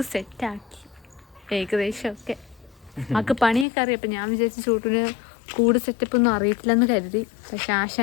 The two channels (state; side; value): drops out; right; at 3.7 s